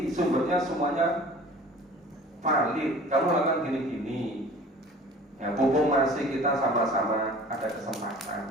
sumbernya semuanya valid. Kamu lakukan gini. Ya, pupung masih kita sama-sama ada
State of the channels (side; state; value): both; normal; correlation 0.45